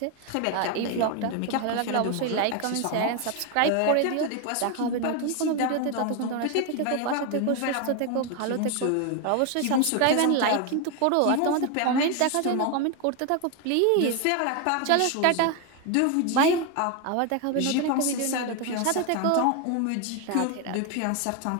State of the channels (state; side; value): different; both; correlation 0.01